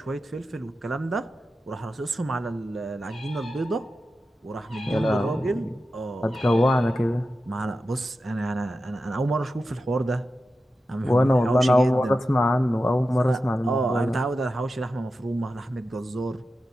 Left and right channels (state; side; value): normal; both; correlation 0.92